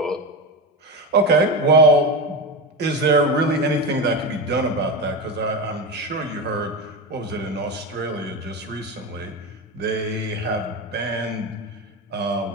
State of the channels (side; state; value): both; normal; correlation 0.19